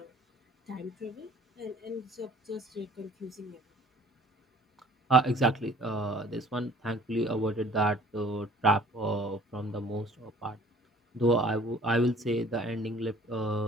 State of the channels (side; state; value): both; normal; correlation 0.53